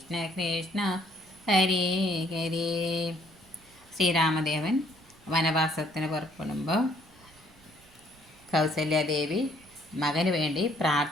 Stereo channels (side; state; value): right; noise; rumble, 28 dB below the sound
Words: കൃഷ്ണ ഹരേ ഹരേ. ശ്രീരാമദേവൻ വനവാസത്തിന് പുറപ്പെടുമ്പോൾ കൗസല്യാദേവി മകന് വേണ്ടി